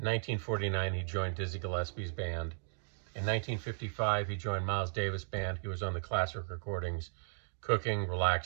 1949, he joined Dizzy Gillespie's band. In 1955, he joined Miles Davis' band. He was on the classic recordings, Cooking,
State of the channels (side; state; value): left; silent; digital silence